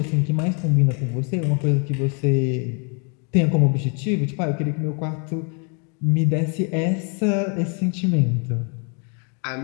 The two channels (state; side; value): quieter; right; 37.0 dB